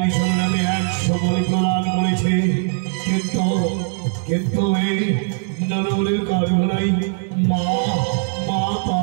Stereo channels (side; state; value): left; silent; 66 dB below the other